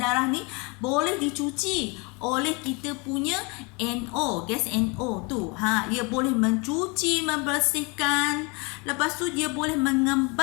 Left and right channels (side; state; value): right; quieter; 29.9 dB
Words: ni boleh dicuci oleh kita punya NO, gas NO tu. Ia boleh mencuci, membersihkan. Lepas tu dia boleh